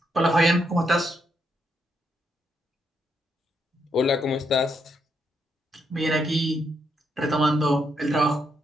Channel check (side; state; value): both; normal; correlation 0.78